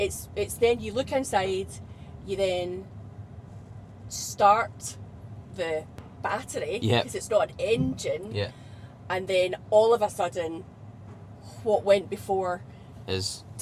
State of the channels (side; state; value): both; identical; correlation 1.00